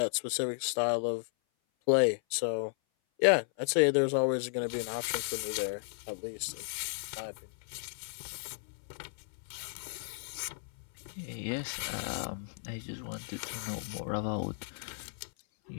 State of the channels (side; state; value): right; silent; 55 dB below the other